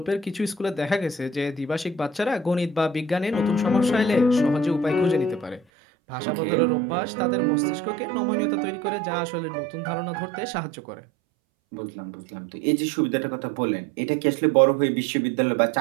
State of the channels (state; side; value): drops out; left; at 5.6 s